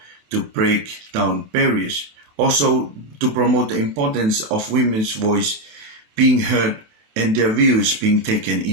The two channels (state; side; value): late; left; 28 ms